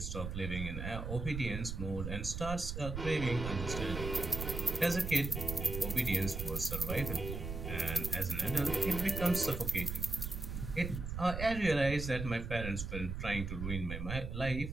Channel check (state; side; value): noise; right; rumble, 5 dB below the sound